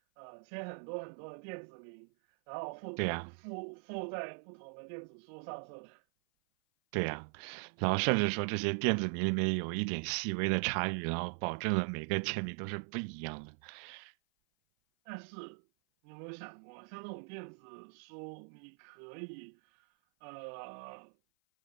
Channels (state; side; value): silent; left; 52 dB below the other